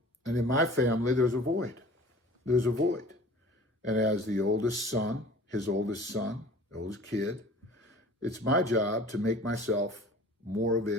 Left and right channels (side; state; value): both; normal; correlation 0.45